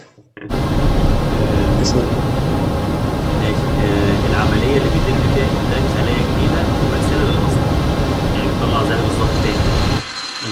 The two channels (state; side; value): identical; both; correlation 1.00